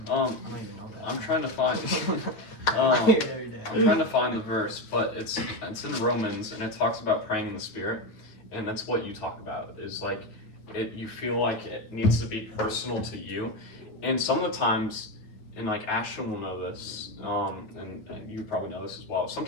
I don't even know that. I'm trying to find. I hear it every day. I'm trying to find the verse, but it's in Romans, and it talks about praying in the Spirit, and that's what you talk about. Is like you feel like it needs to be personal to you, and some of the times, and like Ashton will know this, and you probably know this as well.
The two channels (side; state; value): right; late; 9.1 ms